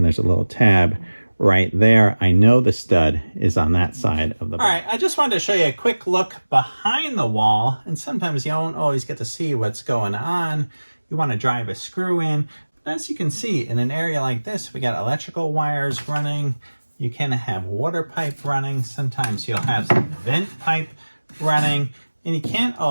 there's a little tab right there. I know the stud is on that side of the box. All right, I just wanted to show you a quick look behind the wall, and sometimes you don't always get to see what's going on. You want to drive a screw in. As you can see, in an area like this, we got electrical wires running. You can have water pipe running. Sometimes you'll have some vent pipe running, and you can't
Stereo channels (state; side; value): inverted; both; correlation -1.00